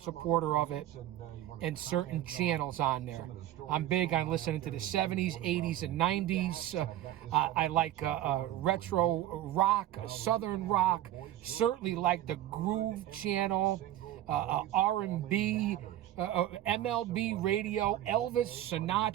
supporter of it, and certain channels on there. I'm big on listening to the 70s, 80s, and 90s. I like retro rock, southern rock. Certainly like the Groove channel, R&B, MLB radio, Elvis,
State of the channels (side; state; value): left; quieter; 13.2 dB